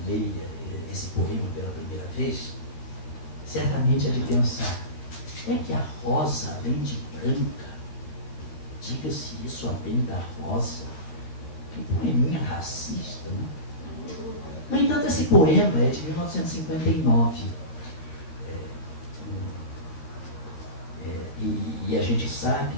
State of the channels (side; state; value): right; late; 13 ms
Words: leia esse poema pela primeira vez, certamente é de pensar, é que a rosa, além de branca, diga-se isso além da rosa, que poeminha racista, né? No entanto, esse poema é de 1959. E a gente sabe